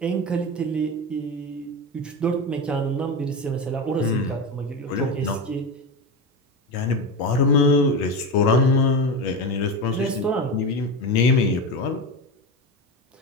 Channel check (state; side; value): normal; both; correlation 0.21